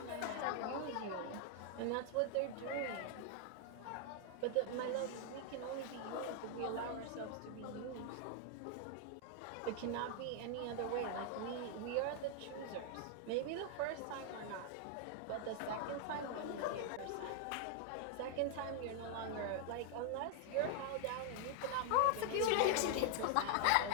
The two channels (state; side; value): different; both; correlation 0.00